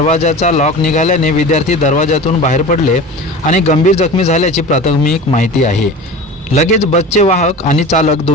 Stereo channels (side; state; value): both; normal; correlation 0.35